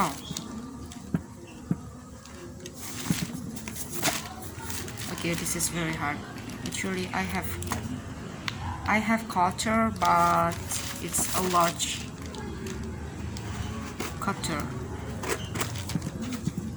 Okay, this is very hard. Actually, I have cutter, but it's a large cutter.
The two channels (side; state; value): both; identical; correlation 1.00